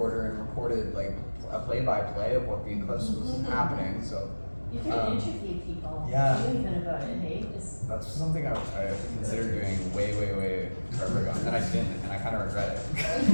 and recorded like a play-by-play of what the eclipse was happening. So You can interview people. yeah. Even about it, hey? that's something I considered doing way forever ago, and then I didn't, and I kind of regret it.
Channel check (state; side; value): inverted; both; correlation -1.00